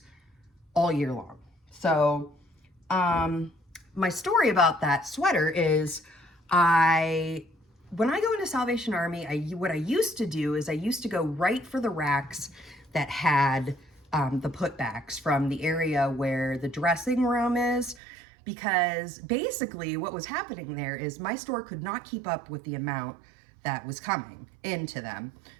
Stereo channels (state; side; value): drops out; left; at 18.0 s